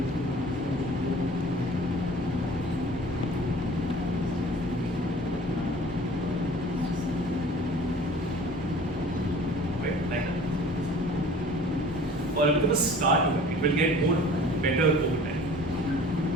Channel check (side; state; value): both; normal; correlation 0.46